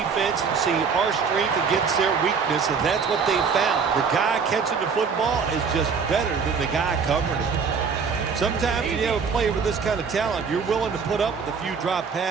and see our strength against their weakness, and that's what they found. The guy catching the football is just better than the guy covering it. Sometimes when you have a player with this kind of talent, you're willing to put up with a few drop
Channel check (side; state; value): left; quieter; 5.7 dB